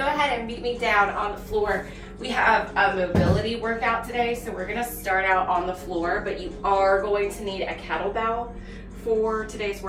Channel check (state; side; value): identical; both; correlation 1.00